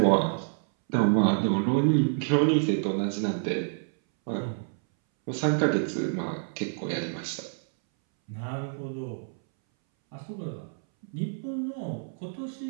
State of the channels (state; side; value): silent; left; 59 dB below the other